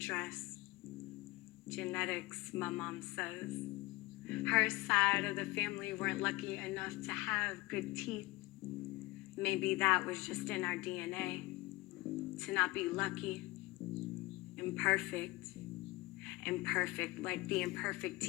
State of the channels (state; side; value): quieter; right; 20.9 dB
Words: Genetics, my mom says. Her side of the family weren't lucky enough to have good teeth. Maybe that was just in our DNA, to not be lucky, imperfect like the imperfect